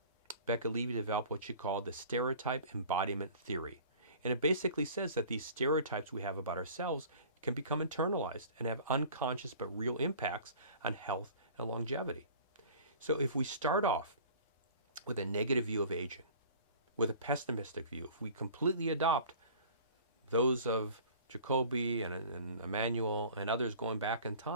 Becca Levy developed what she called the stereotype embodiment theory. And it basically says that these stereotypes we have about ourselves can become internalized and have unconscious but real impacts on health and longevity. So if we start off with a negative view of aging, with a pessimistic view, if we completely adopt those of Jacoby and Emmanuel and others going back in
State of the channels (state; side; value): inverted; both; correlation -0.45